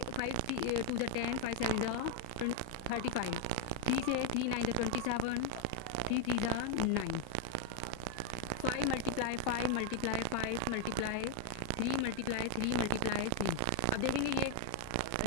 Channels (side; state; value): both; different; correlation 0.01